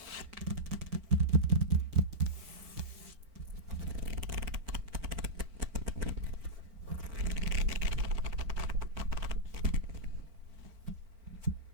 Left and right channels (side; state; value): left; late; 4.4 ms